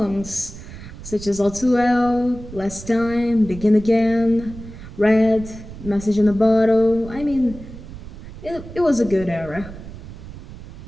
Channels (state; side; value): noise; right; rumble, 14 dB below the sound